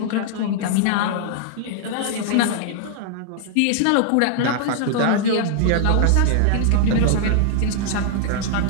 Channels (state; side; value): different; both; correlation -0.01